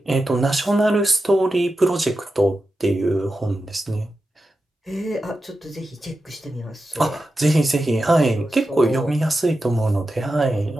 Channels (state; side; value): normal; both; correlation 0.91